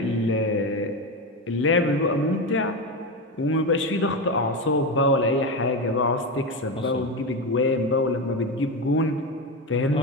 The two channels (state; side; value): normal; both; correlation 0.16